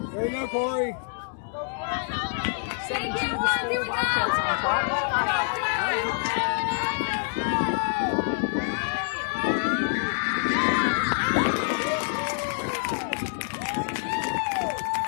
There you go, Corey. 7-2 the score. Wildcats on top. 1 out. Pitch on the way. Swing and a miss. For strike 2.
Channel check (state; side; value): silent; right; 61 dB below the other